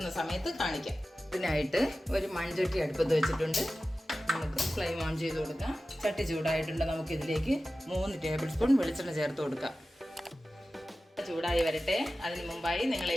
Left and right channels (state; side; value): normal; both; correlation 0.95